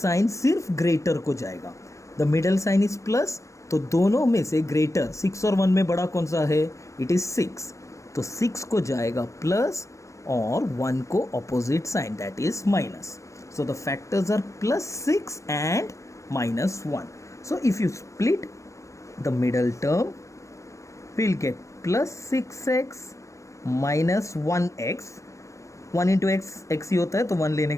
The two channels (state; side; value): late; right; 0.15 ms